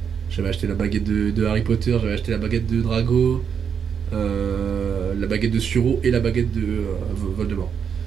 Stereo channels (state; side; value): quieter; left; 7.2 dB